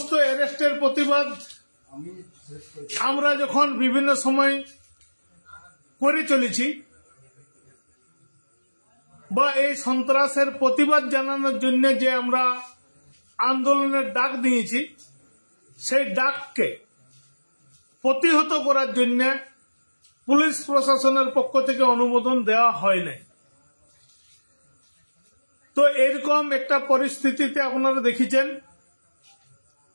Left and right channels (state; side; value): inverted; both; correlation -1.00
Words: অ্যারেস্টের প্রতিবাদ আমরা যখন বিভিন্ন সময় করে চলেছি বা এই সন্ত্রাসের প্রতিবাদ জানানোর জন্য যে আমরা আন্দোলনের ডাক দিয়েছি, সেই ডাককে প্রতিহত করার জন্য পুলিশ প্রশাসনের পক্ষ থেকে অনুমোদন দেওয়া হয় নাই। তো এরকম একটা পরিস্থিতিতে আপনারা দেখেছেন